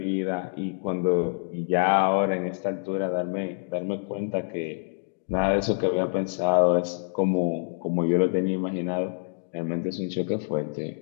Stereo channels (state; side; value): silent; right; digital silence